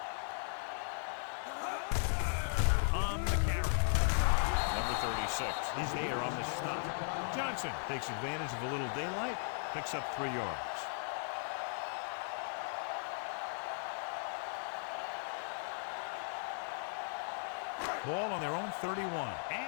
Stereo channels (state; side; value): silent; right; 53 dB below the other